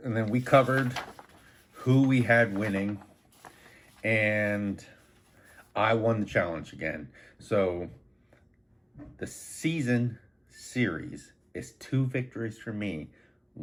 And then we covered who we had winning, and I won the challenge again. So the season series is 2 victories for me,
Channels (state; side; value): identical; both; correlation 1.00